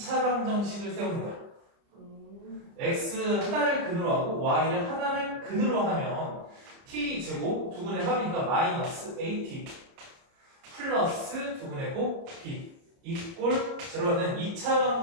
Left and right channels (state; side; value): late; left; 30 ms